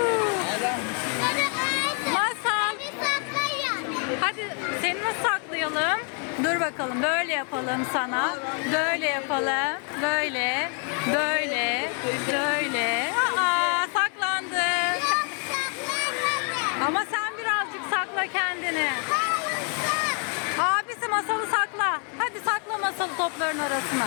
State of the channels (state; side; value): quieter; right; 39.6 dB